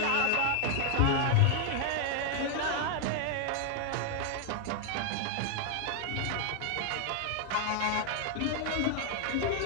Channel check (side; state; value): both; different; correlation 0.00